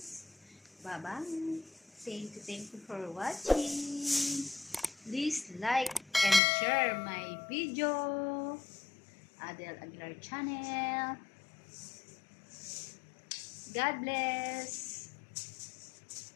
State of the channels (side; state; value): right; drops out; at 6.4 s